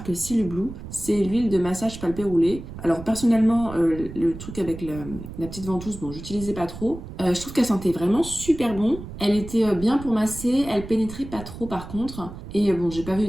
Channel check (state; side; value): noise; right; rumble, 12 dB below the sound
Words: Seal Blue. C'est l'huile de massage palpé roulé. Alors personnellement, le truc avec la petite ventouse, bon, j'utilisais pas trop. Je trouve qu'elle sentait vraiment super bon. Elle était bien pour masser, elle pénétrait pas trop par contre. Et bon, j'ai pas vu